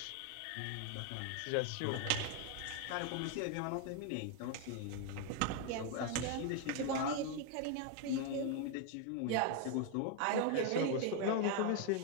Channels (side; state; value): both; different; correlation 0.01